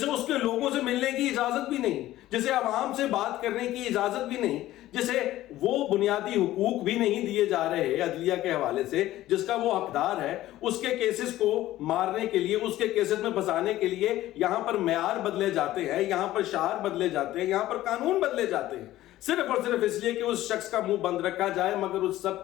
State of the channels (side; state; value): right; quieter; 15.0 dB